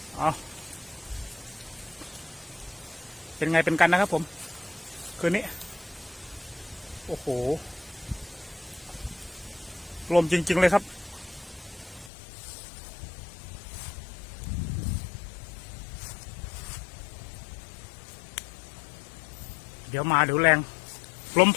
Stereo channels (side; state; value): right; drops out; at 12.1 s